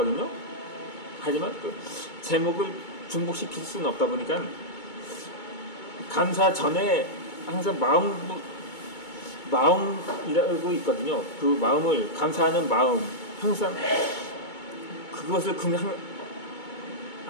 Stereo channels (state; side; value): late; right; 2.2 ms